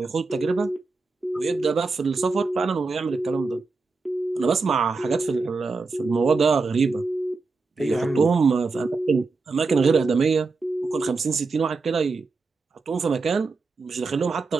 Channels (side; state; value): left; quieter; 4.0 dB